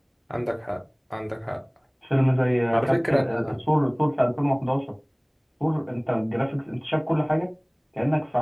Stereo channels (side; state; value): both; identical; correlation 1.00